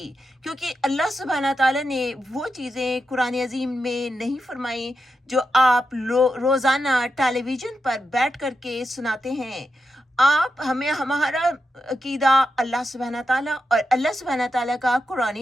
کیونکہ اللہ سبحانہ تعالیٰ نے وہ چیزیں قرآن عظیم میں نہیں فرمائی جو آپ روزانہ ٹیلی ویژن پر بیٹھ کر کے سناتے ہیں۔ ہمارا عقیدہ اللہ سبحانہ تعالیٰ اور اللہ سبحانہ تعالیٰ کا قرآن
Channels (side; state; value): both; normal; correlation 0.87